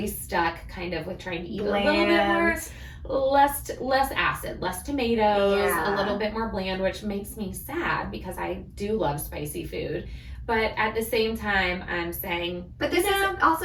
stuck, kind of with trying to eat a little bit more. Less acid, less tomatoes, a little bit more bland, which makes me sad because I do love spicy food. But at the same time, I'm saying... But this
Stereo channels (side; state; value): both; identical; correlation 1.00